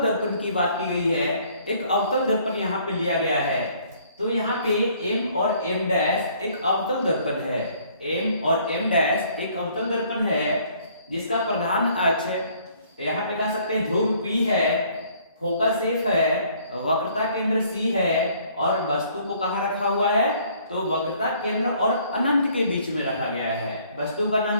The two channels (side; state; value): both; inverted; correlation -0.61